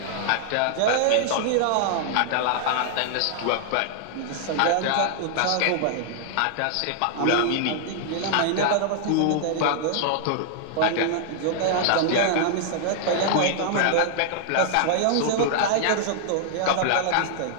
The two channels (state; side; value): different; both; correlation -0.01